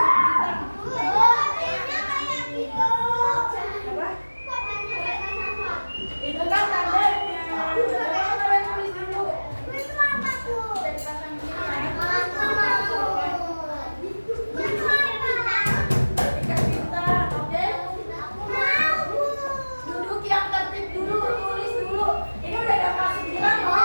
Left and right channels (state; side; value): inverted; both; correlation -1.00